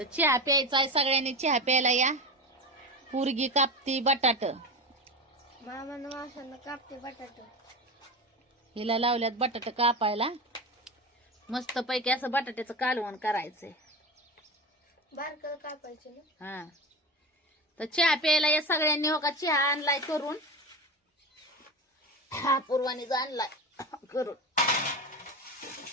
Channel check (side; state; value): both; normal; correlation 0.24